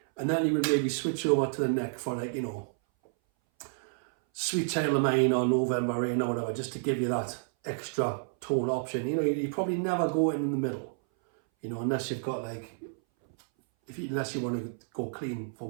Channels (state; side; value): silent; left; 58 dB below the other